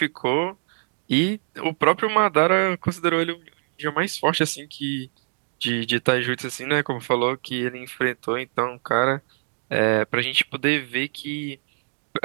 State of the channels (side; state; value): left; silent; 62 dB below the other